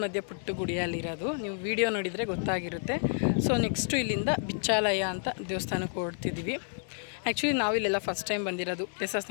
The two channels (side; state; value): right; silent; 58 dB below the other